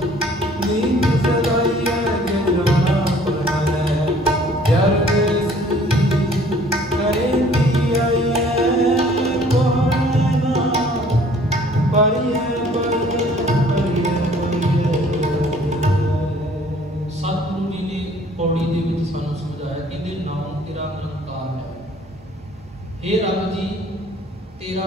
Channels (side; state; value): both; normal; correlation 0.55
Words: हे रब जी तेरा